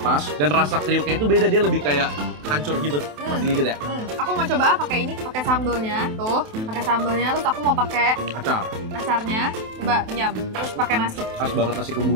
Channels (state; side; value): late; left; 27 ms